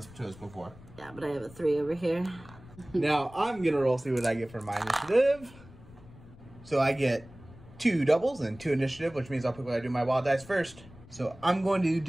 to us before. Yeah, but I have a 3 over here. Now, I'm going to roll, see what I get for my initiative. So I get 2 doubles and 2 initiative, which means I'll pick what I do my wild dice first. So I'm going to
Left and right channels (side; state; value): left; noise; rumble, 21 dB below the sound